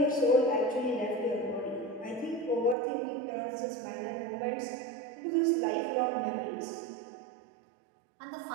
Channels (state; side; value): drops out; left; at 2.8 s